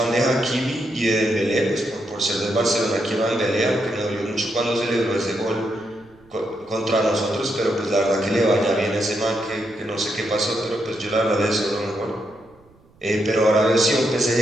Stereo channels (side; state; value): right; noise; rumble, 30 dB below the sound